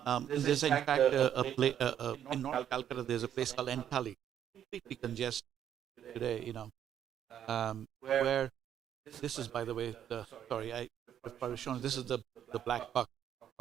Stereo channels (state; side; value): quieter; left; 9.9 dB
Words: There's in fact in North Calcutta. There's a place called Entally, completely congested today. Where this is, by the way, I was showing. This is the black buck,